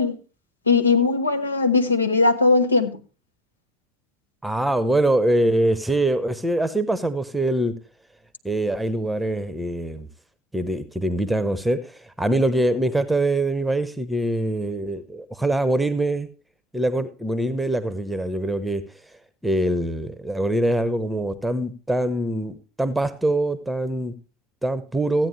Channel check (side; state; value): both; normal; correlation 0.44